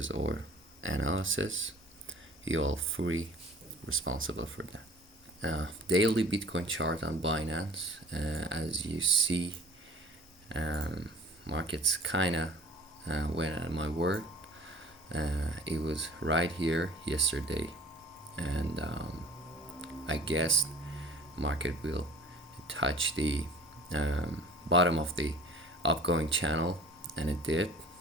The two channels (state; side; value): normal; both; correlation 0.46